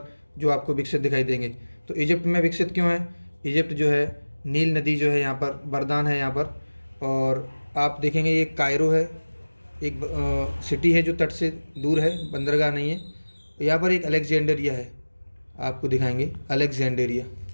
जो आपको विकसित दिखाई देंगे। तो इजिप्ट में विकसित क्यों है? इजिप्ट जो है नील नदी जो है यहाँ पर वरदान है यहाँ पर। और आप देखेंगे ये कायरो है, एक सिटी है जो तट से दूर है, बंदरगाह नहीं है। यहाँ पर एक अलेक्जेंडरिया है, आपको दिखाएंगे अलेक्जेंडेरिया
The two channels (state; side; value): inverted; both; correlation -1.00